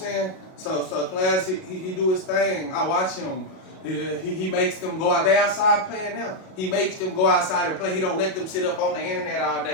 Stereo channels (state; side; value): late; right; 38 ms